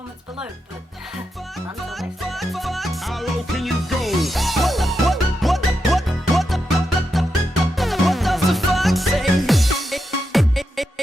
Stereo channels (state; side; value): normal; both; correlation 0.86